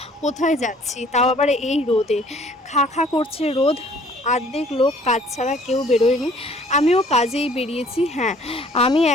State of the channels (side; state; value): both; normal; correlation 0.56